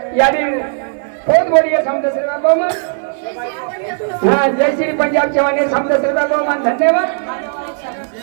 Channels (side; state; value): left; silent; 58 dB below the other